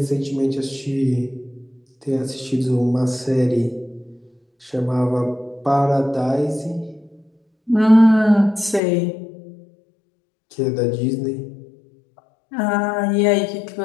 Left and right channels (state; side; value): drops out; right; at 8.8 s